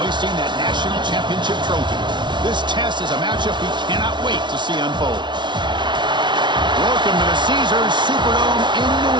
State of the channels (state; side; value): late; left; 0.23 ms